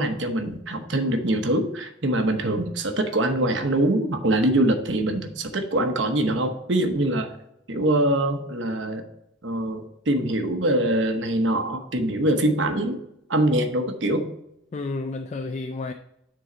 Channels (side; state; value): both; normal; correlation 0.36